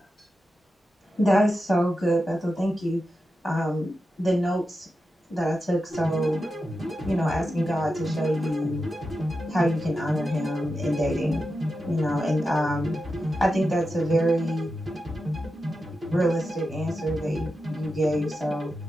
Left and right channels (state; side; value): normal; both; correlation 0.90